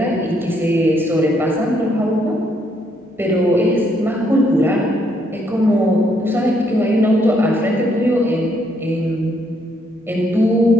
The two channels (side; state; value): both; normal; correlation 0.72